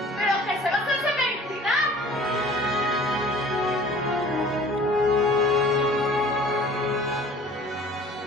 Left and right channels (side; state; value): both; normal; correlation 0.47